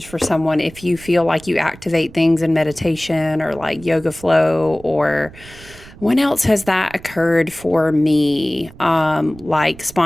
for someone if you feel like you activate things in meditation or like yoga flow or when else has that occurred for me? Like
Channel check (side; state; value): right; noise; rumble, 20 dB below the sound